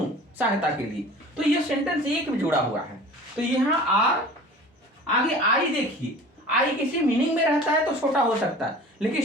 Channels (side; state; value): both; normal; correlation 0.42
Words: सहायता के लिए। तो ये सेंटेंस एक में जुड़ा हुआ है। तो यहाँ आर, आगे आई, देखिए आई किसी मीनिंग में रहता है तो छोटा हो सकता है, लेकिन